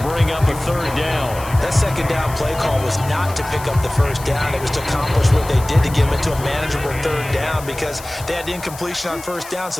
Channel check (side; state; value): left; noise; hiss, 16 dB below the sound